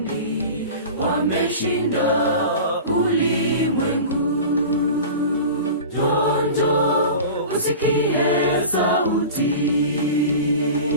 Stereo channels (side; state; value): both; inverted; correlation -0.35